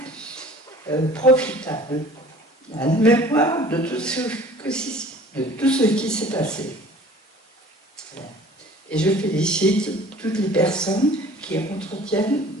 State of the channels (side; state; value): both; normal; correlation 0.47